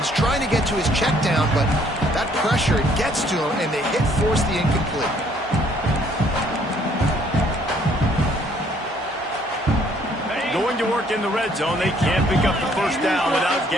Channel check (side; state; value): both; normal; correlation 0.63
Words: trying to get to his check down, but that pressure gets to him, and they force the incomplete. Going to work in the red zone, they can't pick up the first down without